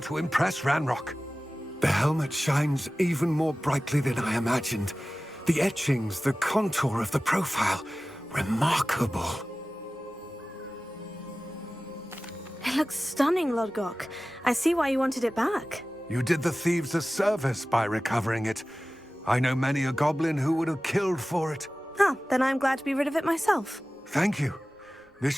to impress Ranrock. The helmet shines even more brightly than I imagined. The etchings, the contour of the profile, remarkable. It looks stunning, Lodgok. I see why you wanted it back. You did the thieves a service by recovering it. I know many a goblin who would have killed for it. Oh, then I'm glad to be rid of it myself. Thank you. This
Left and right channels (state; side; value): normal; both; correlation 0.96